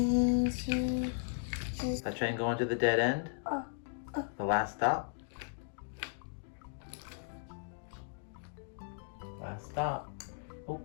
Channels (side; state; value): right; silent; digital silence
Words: That train going to the dead end? The last stop? Last stop. Oh.